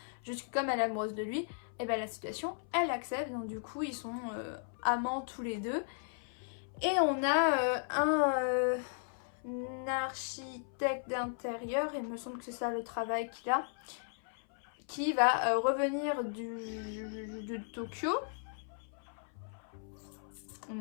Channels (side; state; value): right; silent; 54 dB below the other